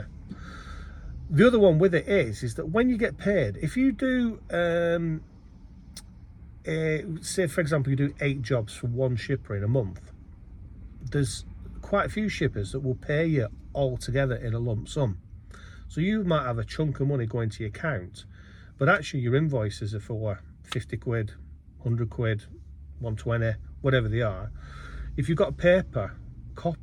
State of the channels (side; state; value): both; identical; correlation 1.00